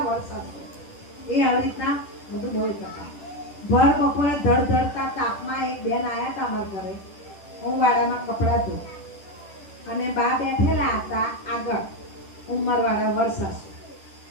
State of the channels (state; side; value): late; right; 10 ms